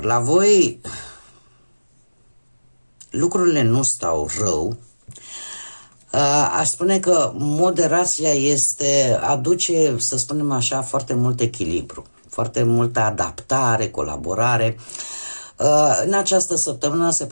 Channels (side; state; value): both; inverted; correlation -1.00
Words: la voi lucrurile nu stau rău. Aș spune că moderația aduce, să spunem așa, foarte mult echilibru, foarte multă adaptare, colaborare. În această săptămână se